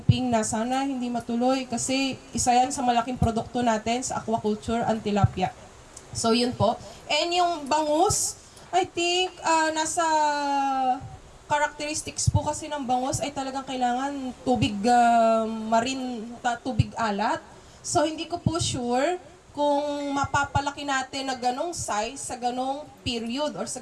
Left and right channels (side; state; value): both; identical; correlation 1.00